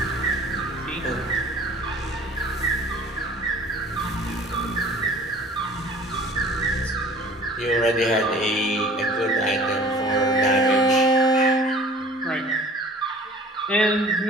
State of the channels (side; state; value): both; normal; correlation 0.48